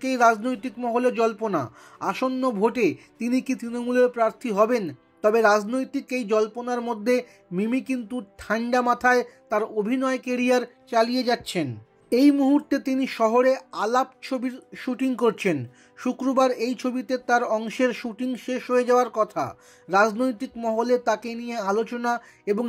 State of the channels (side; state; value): both; identical; correlation 1.00